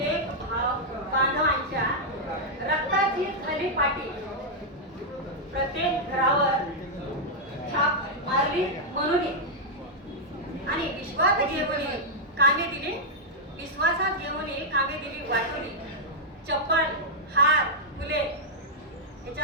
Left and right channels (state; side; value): normal; both; correlation -0.05